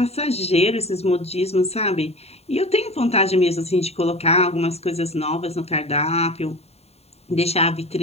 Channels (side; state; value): right; late; 0.30 ms